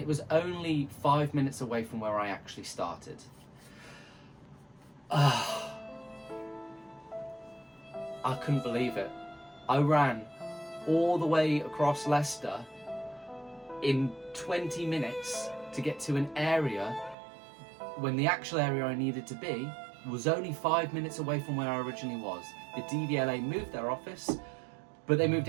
was only 5 minutes away from where I actually started. I couldn't believe it. I ran all the way across Leicester in 20 minutes to get to an area when the actual area I needed to be was only 5 minutes away from where I originally was. The DVLA moved their office, but they moved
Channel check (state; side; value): drops out; left; at 17.2 s